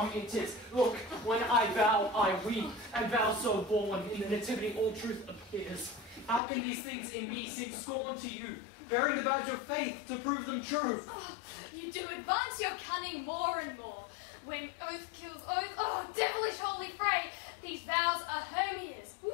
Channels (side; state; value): right; drops out; at 6.4 s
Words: in tis. Look, when I vow, I weep, and vow so born, in the nativity all truth appears. How can these things in me seem scorn to you, bearing the badge of faith to prove them true? Oh, you do advance your cunning more and more. When oath kills oath, oh, devilish holy fray, these vows are Hermia's. Will